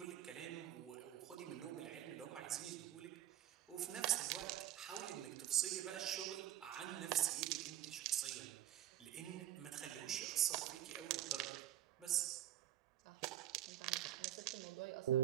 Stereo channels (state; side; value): quieter; left; 12.2 dB